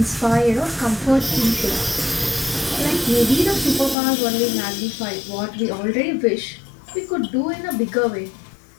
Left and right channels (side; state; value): right; drops out; at 4.0 s